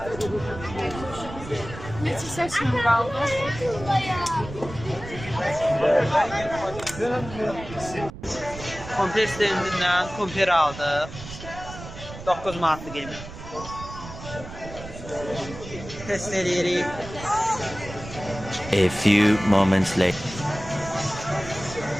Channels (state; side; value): noise; right; rumble, 13 dB below the sound